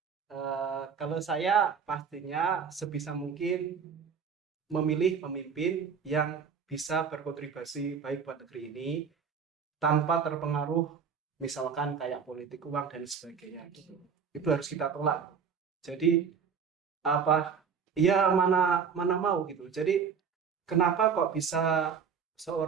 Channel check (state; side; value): quieter; left; 6.5 dB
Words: Kalau saya pastinya sebisa mungkin memilih pemimpin yang bisa berkontribusi baik buat negeri ini tanpa terpengaruh misalkan kayak politik uang dan sebagainya gitu. Itu harus kita tolak. Jadi mana mau gitu. Jadi kenapa kok bisa